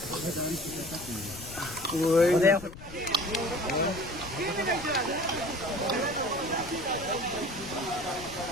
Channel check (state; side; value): noise; left; rumble, 15 dB below the sound